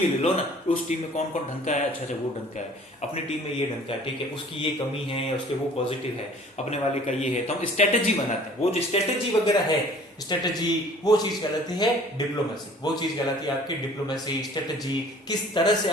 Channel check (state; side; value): normal; both; correlation 0.50